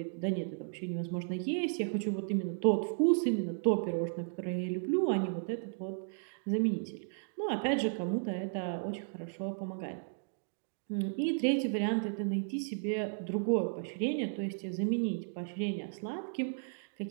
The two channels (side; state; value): left; silent; digital silence